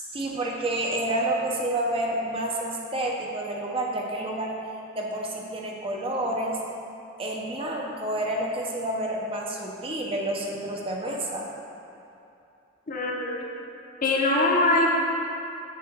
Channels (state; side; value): normal; both; correlation 0.08